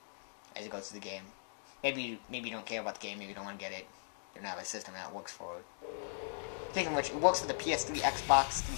as it goes through the game. Maybe you don't care about the game, maybe you don't want to get it. You don't have a system that works for it. Speaking of which, it works for the PS3, Xbox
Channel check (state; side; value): silent; right; digital silence